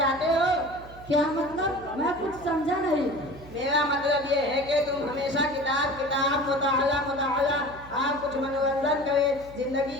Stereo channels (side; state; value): right; noise; hum, 19 dB below the sound